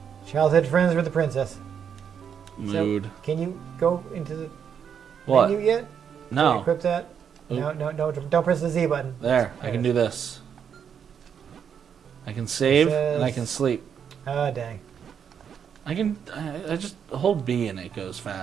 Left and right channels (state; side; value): quieter; left; 7.7 dB